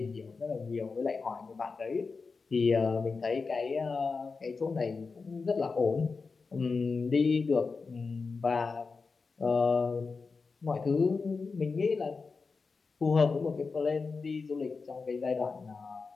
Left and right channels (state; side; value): quieter; right; 4.5 dB